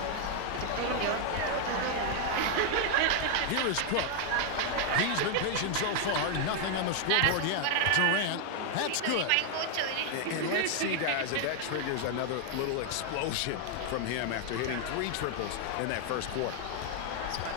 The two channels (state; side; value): different; both; correlation 0.00